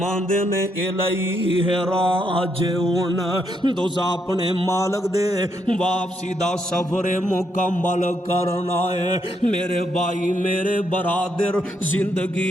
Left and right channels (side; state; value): both; normal; correlation 0.77